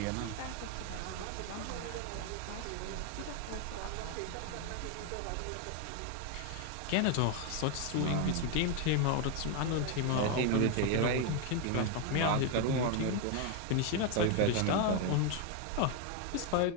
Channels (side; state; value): both; different; correlation 0.01